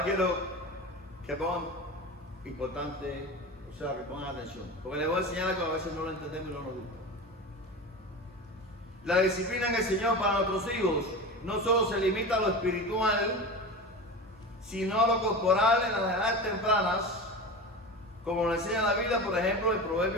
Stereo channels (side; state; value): both; normal; correlation 0.29